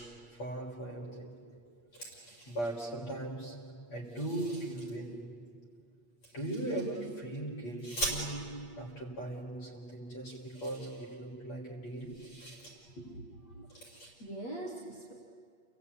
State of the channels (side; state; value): right; late; 8.5 ms